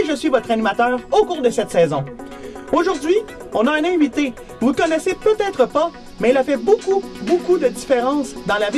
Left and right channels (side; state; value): both; identical; correlation 1.00